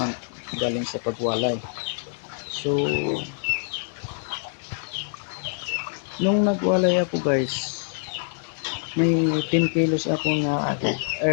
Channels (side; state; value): right; silent; digital silence